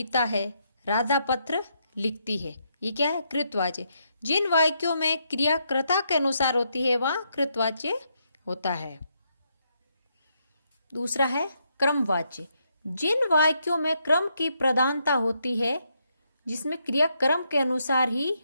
है, राधा पत्र लिखती है। ये क्या है? कृतवाच्य। जिन वाक्यों में क्रिया कर्ता के अनुसार होती है वहां कृतवाच्य होता है। दूसरा है क्रमवाच्य, जिन वाक्यों में क्रम की प्रधानता होती है जिसमें क्रिया क्रम के अनुसार ही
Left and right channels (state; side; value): inverted; both; correlation -0.77